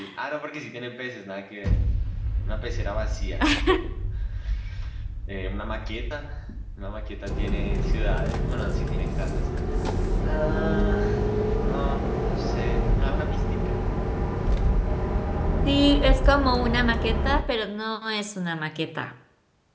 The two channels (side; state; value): both; identical; correlation 1.00